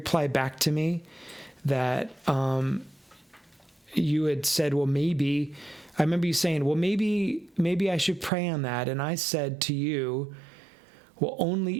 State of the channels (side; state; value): left; drops out; at 8.3 s